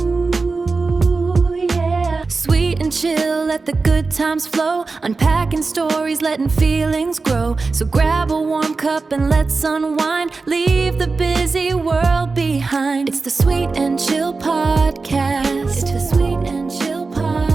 yeah. Sweet and chill, let the good times flow. Unpacking stories, letting feelings grow. So grab a warm cup and let's unwind. Leave the busy world behind. It's the Sweet and Chill Podcast.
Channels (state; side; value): quieter; left; 4.0 dB